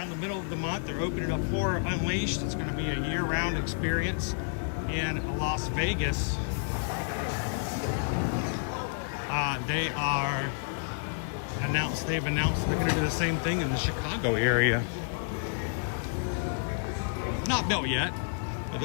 the middle of the month, they're opening up Horror Unleashed. It's going to be a year-round experience in Las Vegas. They've announced they're going to do the same thing in the Chicago area. Not built yet, but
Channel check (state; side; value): silent; right; digital silence